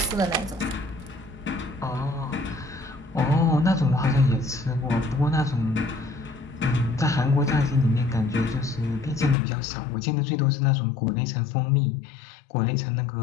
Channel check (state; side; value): drops out; right; at 9.3 s